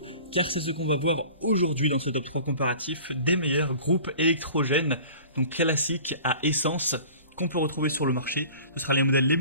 car c'est ce qu'on va voir aujourd'hui dans ce top 3 comparatif des meilleurs groupes électrogènes, donc classiques à essence, qu'on peut retrouver sur le marché. Ce sera les modèles les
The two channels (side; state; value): both; inverted; correlation -0.44